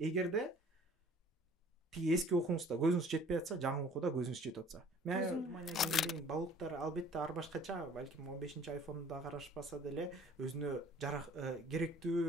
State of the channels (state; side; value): normal; both; correlation 0.53